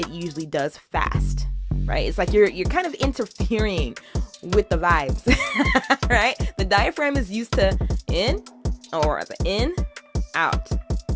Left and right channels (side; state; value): both; identical; correlation 1.00